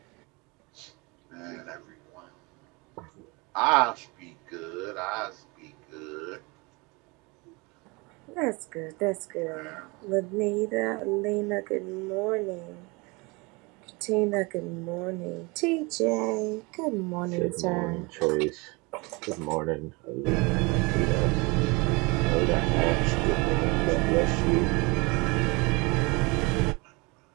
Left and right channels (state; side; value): quieter; left; 27.0 dB